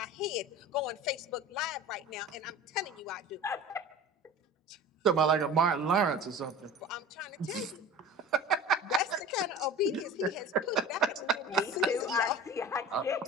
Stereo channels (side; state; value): both; normal; correlation 0.37